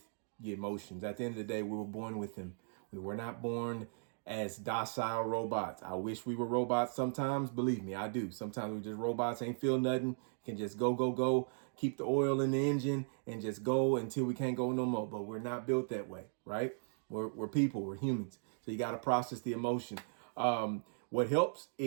your emotions. At the end of the day, we were born with them. We were not born as docile robots. I wish we were robots sometimes. Believe me, I do. Sometimes we just robots, ain't feel nothing, can just go, keep the oil in the engine and just go until we can't go no more. But we're not built that way, right? We're people, we're humans. So you got to process the emotion. What helps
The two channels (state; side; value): silent; left; digital silence